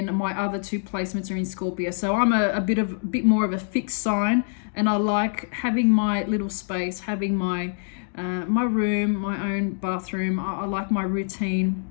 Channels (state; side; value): silent; right; digital silence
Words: my other 2 placements are in Scorpio. So I'm a bit more of a fixed sign, and I like having my little space, having my room, my own bathroom. I like my routine.